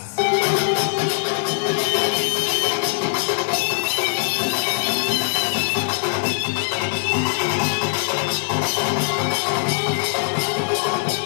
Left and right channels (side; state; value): right; silent; 65 dB below the other